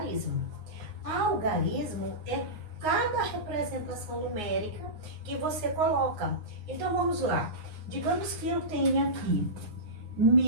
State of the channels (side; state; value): left; late; 9.6 ms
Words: Algarismo é cada representação numérica que você coloca. Então, vamos lá. Digamos que eu tenha aqui